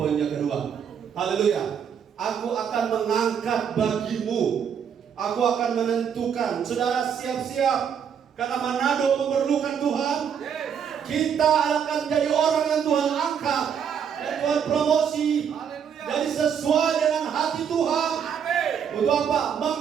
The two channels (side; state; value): left; quieter; 7.7 dB